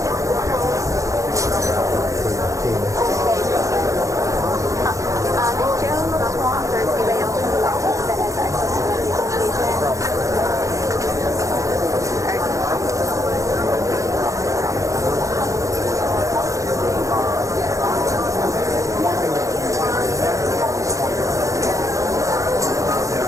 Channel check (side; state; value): left; late; 0.15 ms